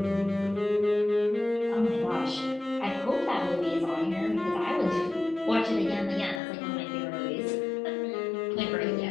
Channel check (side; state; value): right; drops out; at 6.4 s